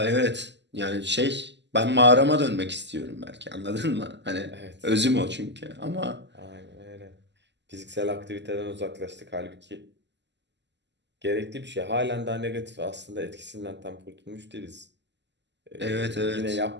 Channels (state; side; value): late; left; 0.51 ms